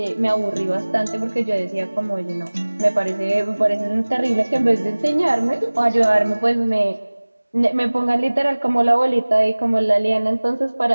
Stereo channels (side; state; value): both; inverted; correlation -1.00